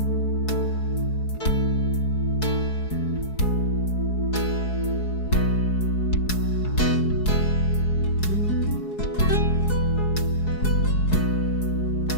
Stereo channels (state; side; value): late; right; 4.7 ms